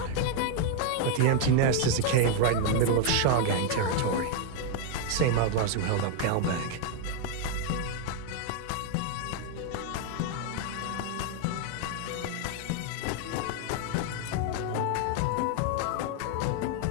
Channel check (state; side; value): different; both; correlation 0.00